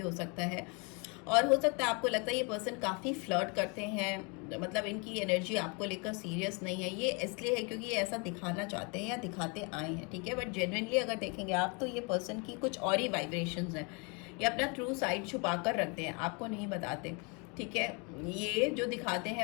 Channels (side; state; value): right; quieter; 32.2 dB